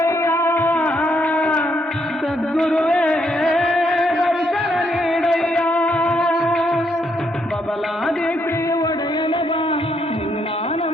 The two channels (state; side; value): normal; both; correlation 0.74